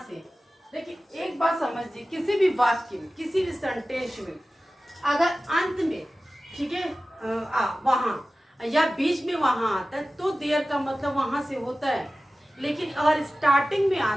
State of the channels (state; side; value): normal; both; correlation 0.96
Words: देखिए, एक बात समझिए, किसी भी वाक्य में, किसी भी सेंटेंस में अगर अंत में, ठीक है, वहां या बीच में वहां आता है तो देयर का मतलब वहां से होता है। लेकिन अगर स्टार्टिंग में